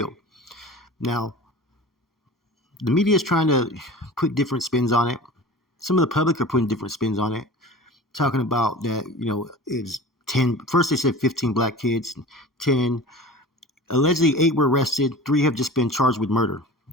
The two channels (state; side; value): normal; both; correlation 0.38